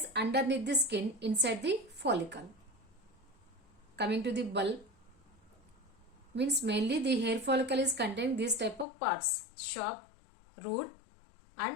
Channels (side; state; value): right; drops out; at 8.8 s